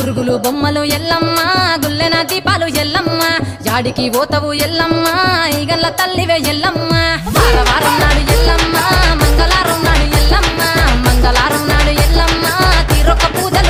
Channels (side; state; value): both; identical; correlation 1.00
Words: బొమ్మలు ఎల్లమ్మ గుల్లెన దీపాలు ఎల్లమ్మ యాడికి పోతవు ఎల్లమ్మ ఈగల్ల తల్లివే ఎల్లమ్మ వారం నాడు ఎల్లమ్మ మంగళారం నాడు ఎల్లమ్మ మంగళారం నాడు ఎల్లమ్మ తీరొక్క